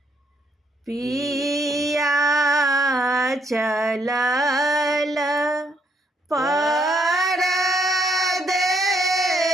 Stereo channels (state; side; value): normal; both; correlation 0.72